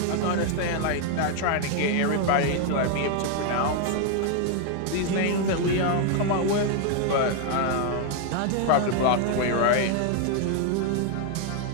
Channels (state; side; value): different; both; correlation 0.00